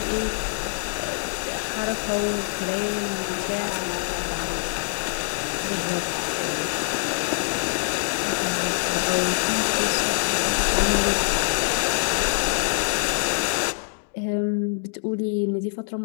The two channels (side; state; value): right; silent; digital silence